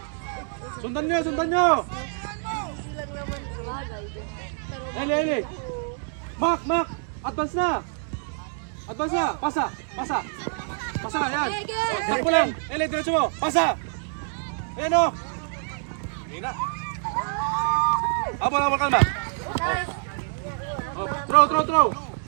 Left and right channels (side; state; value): left; silent; 61 dB below the other